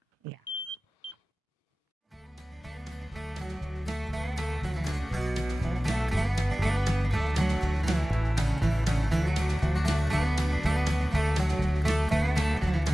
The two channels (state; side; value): normal; both; correlation 0.97